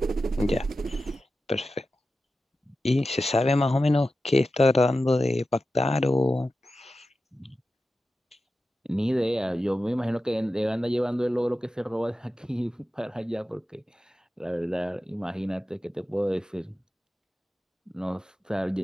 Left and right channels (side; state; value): both; normal; correlation 0.93